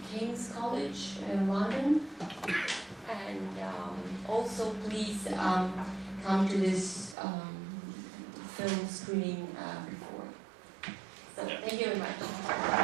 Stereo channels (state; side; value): drops out; left; at 7.2 s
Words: King's College in London. And also please come to this film screening before. So thank you very